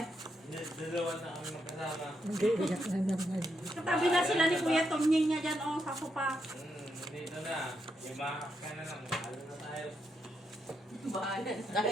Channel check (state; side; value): normal; both; correlation 0.81